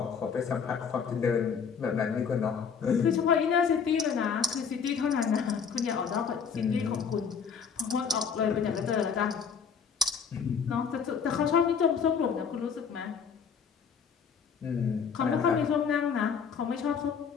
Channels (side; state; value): right; quieter; 6.5 dB